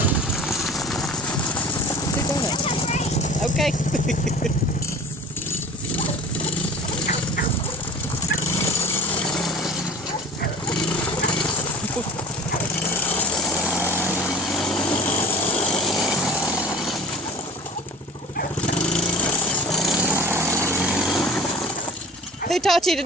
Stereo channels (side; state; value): both; normal; correlation 0.41